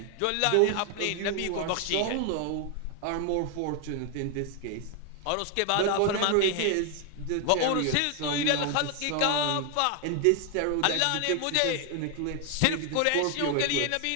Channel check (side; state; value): both; different; correlation 0.00